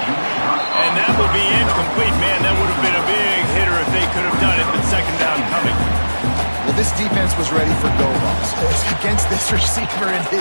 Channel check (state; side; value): inverted; both; correlation -1.00